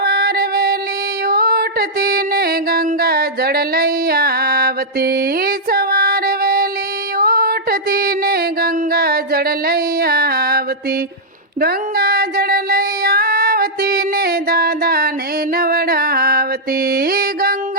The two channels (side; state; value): both; normal; correlation -0.08